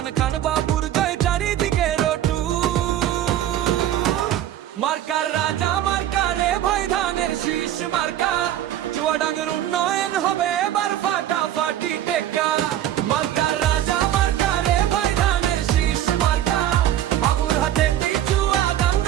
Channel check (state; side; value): quieter; left; 12.0 dB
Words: খান বাবুর জয় চারিদিকে রটু। মার্কার রাজা মার্কা রে ভাই ধানের শীষ মার্কা, চুয়াডাঙ্গার উন্নয়ন হবে এবার ফাটাফাটি টেক্কা। মার্কার রাজা মার্কা রে ভাই ধানের শীষ মার্কা, বাবুর হাতে